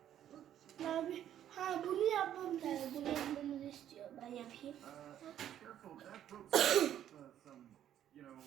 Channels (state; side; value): quieter; left; 10.8 dB